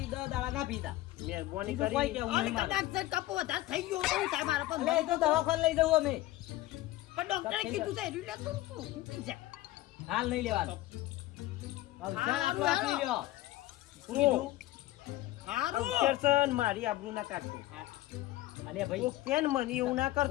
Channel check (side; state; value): right; quieter; 16.8 dB